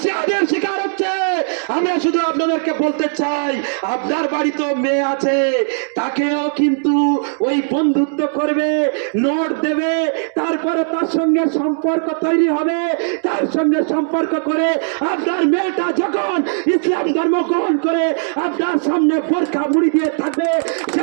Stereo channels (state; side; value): silent; left; digital silence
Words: শিকার হচ্ছে। আমরা শুধু আপনাদেরকে বলতে চাই, আপনার বাড়িতেও মেয়ে আছে, তাকেও কিন্তু ওই বন্ধুত্ব করবে, নোট দেবে, তারপরে তার সঙ্গে সম্পর্ক তৈরি হবে, তার সঙ্গে সম্পর্ক করে আপনার মেয়েটা যখন ইসলাম ধর্ম গ্রহণ করে আপনার সামনে বোরকা মুড়ি দিয়ে থাকবে,